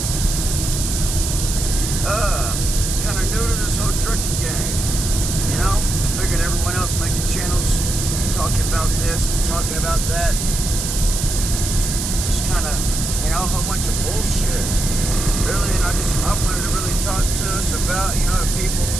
Kind of new to this whole trucking game. You know, I figured everyone else making channels talking about this and talking about that. Just kind of, you know, a whole bunch of bullshit. Really, and I wanted to really talk to us about, you know, the people,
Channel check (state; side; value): noise; right; hiss, 4 dB below the sound